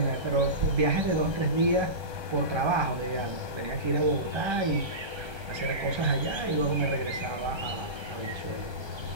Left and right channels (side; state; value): left; late; 1.3 ms